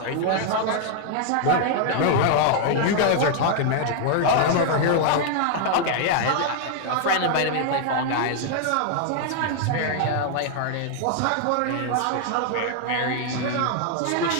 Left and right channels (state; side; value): different; both; correlation 0.00